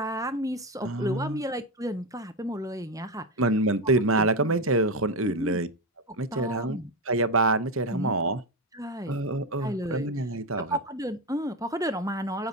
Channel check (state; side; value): normal; both; correlation 0.12